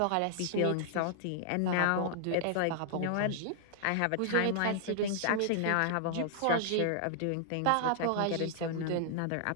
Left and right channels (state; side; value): different; both; correlation -0.01